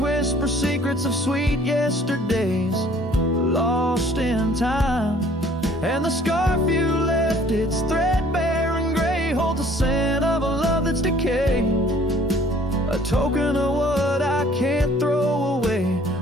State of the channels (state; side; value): normal; both; correlation 0.56